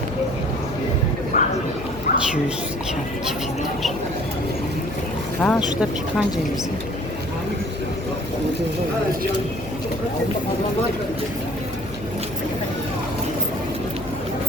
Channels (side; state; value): left; noise; hum, 13 dB below the sound